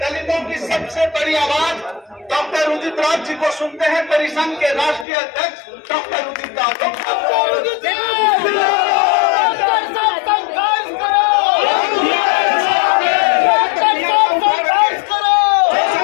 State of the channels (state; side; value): drops out; right; at 5.1 s